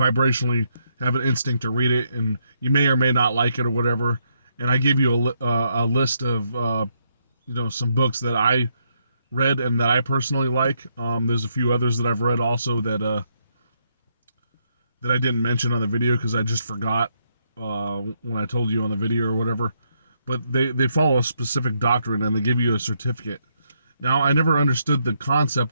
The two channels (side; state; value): both; inverted; correlation -0.76